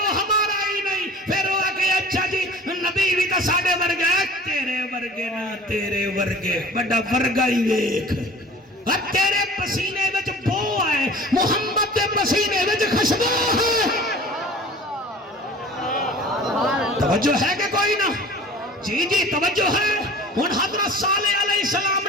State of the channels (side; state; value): both; normal; correlation 0.43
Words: ہمارا ہی نہیں۔ پھر وہ کہ اچھا جی نبی بھی تو ساڑے ورگے ہے، تیرے ورگے نہ تیرے ورگے بڑا ورگا ہی ویکھ، اور تیرے پسینے وچ بو ہے، محمد دے پسینے وچ خوشبو ہے۔ توجہ ہے کہ کوئی نہ؟ جی جی توجہ ہے۔ ہن حضرت صالح علیہ السلام